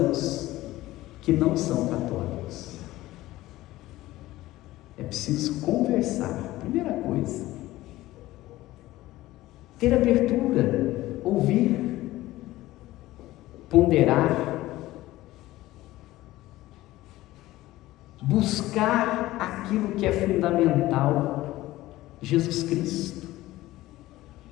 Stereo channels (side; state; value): right; quieter; 16.9 dB